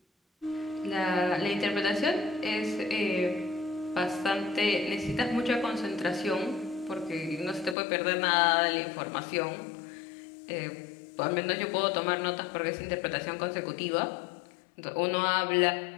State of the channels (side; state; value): right; drops out; at 7.8 s